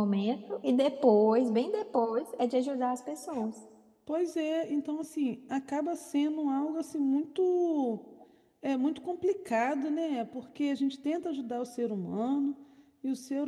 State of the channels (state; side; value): identical; both; correlation 1.00